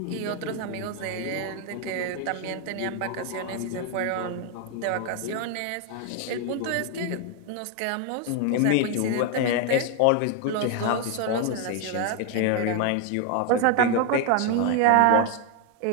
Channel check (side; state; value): both; different; correlation 0.00